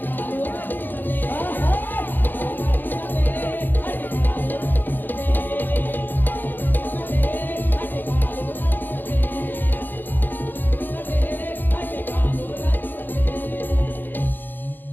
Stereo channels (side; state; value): right; late; 0.090 ms